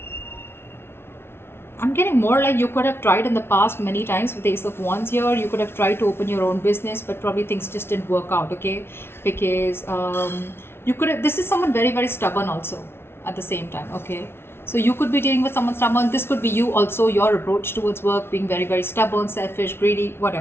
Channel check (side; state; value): right; late; 0.12 ms